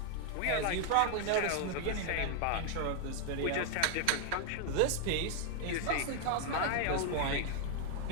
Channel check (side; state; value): both; different; correlation 0.00